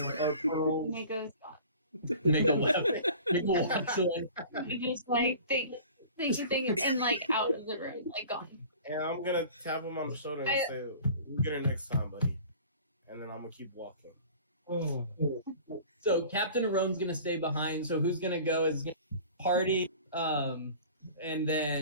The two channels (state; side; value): inverted; both; correlation -0.43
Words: are pearls. Mako's gone. Mako left. Mako walks away. You just like think and like out of the room, like gone. And I'm gonna tap him on the shoulder and say, "We'll get her next time, buddy." And then I'm gonna keep walking. So Captain Arone's gonna stay behind. So who's gonna go is Party, and